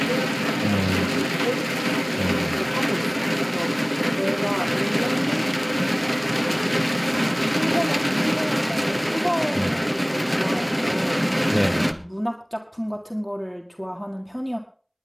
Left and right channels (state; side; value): identical; both; correlation 1.00